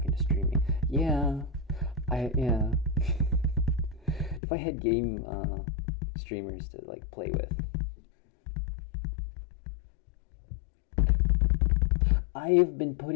into streaming. Yeah, yeah. If I had game streamers to like play with. I've been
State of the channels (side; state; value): right; drops out; at 4.4 s